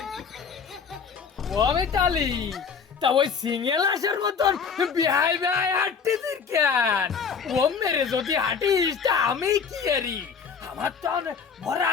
ও আমি চালি তা ওই সিঙ্গেল আসার মতন বিহাই বিহাই হাঁটতেছিস কেন? ও মেরে যদি হাঁটিস তা আমি কি এরি? আমার তো ভরা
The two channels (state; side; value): quieter; right; 6.1 dB